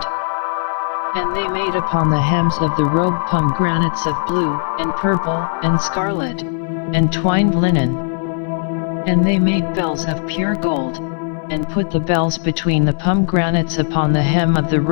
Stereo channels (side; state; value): right; silent; 67 dB below the other